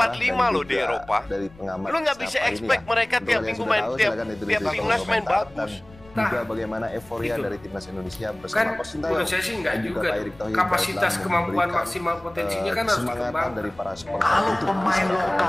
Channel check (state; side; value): noise; left; rumble, 24 dB below the sound